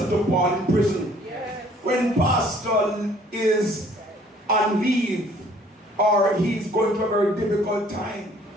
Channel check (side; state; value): both; normal; correlation 0.58